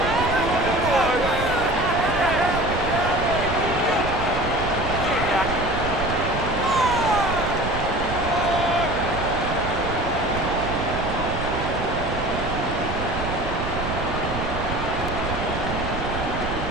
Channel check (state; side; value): noise; right; rumble, 6 dB below the sound